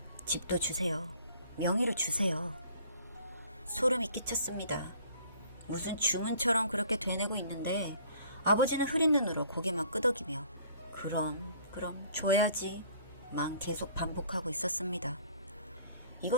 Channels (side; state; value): both; inverted; correlation -0.55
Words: 집도 주세요. 명의로 주세요. 소름이 끼쳤습니다. 무슨 주문처럼 그렇게 되뇌고 있는데 아버지는 흐린 눈으로 고개만 끄덕이며 그럼 줘야지 만 계속 반복하고 있었습니다.